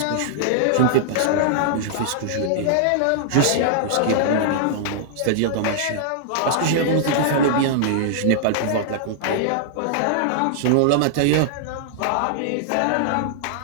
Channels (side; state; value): both; different; correlation -0.01